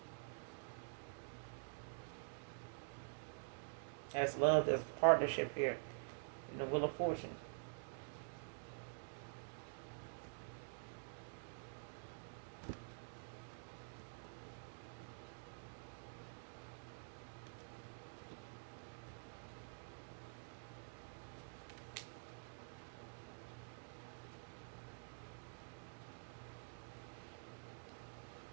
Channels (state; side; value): silent; left; digital silence